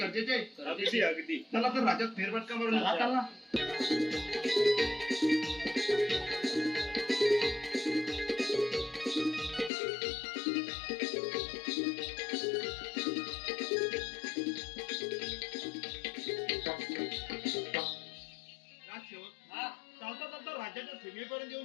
आहे अगदी अगदी चला तर राज्यात फेरफटका मारून चला, येऊया. चला. राजसेवक हा. चालता चालता राज्याच्या सीमेपर्यंत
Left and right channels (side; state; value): right; drops out; at 9.7 s